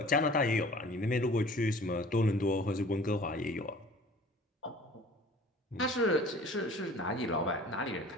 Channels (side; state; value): both; normal; correlation 0.46